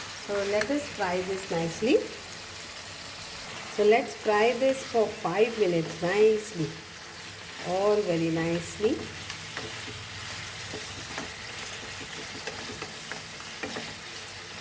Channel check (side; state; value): both; identical; correlation 1.00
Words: So let us fry this nicely. So let's fry this for 5 minutes nicely, all very nicely.